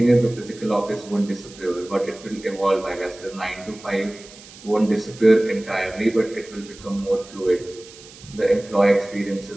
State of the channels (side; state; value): right; noise; hiss, 20 dB below the sound